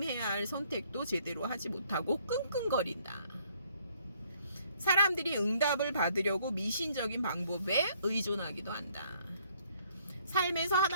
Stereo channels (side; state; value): both; inverted; correlation -0.64